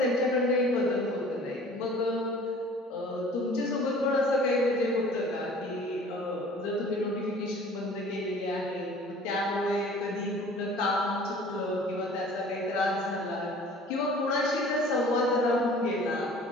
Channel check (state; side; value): normal; both; correlation 0.48